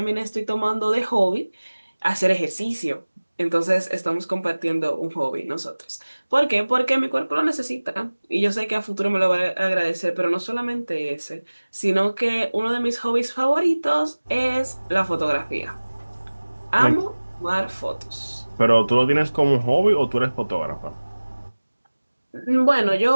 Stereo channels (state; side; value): inverted; both; correlation -1.00